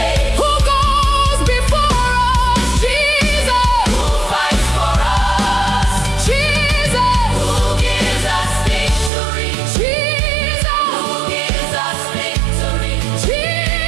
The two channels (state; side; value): drops out; left; at 9.1 s